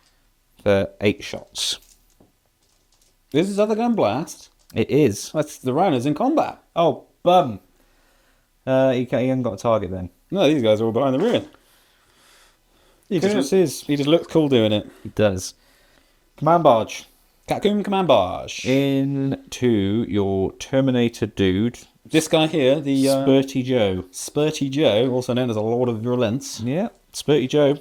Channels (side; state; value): both; identical; correlation 1.00